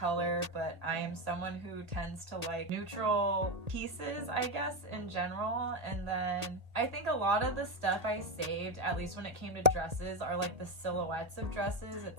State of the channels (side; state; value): left; late; 1.8 ms